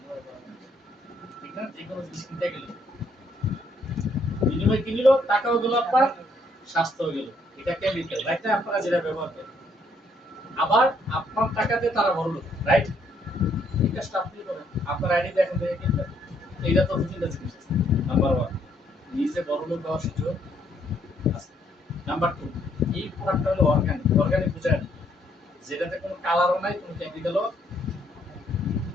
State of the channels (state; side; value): normal; both; correlation 0.69